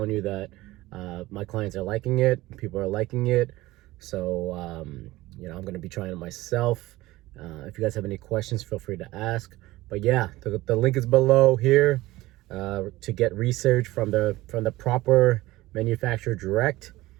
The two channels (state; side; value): quieter; left; 18.3 dB